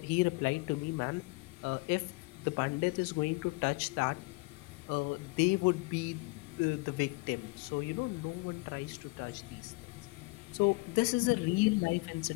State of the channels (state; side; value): quieter; right; 26.4 dB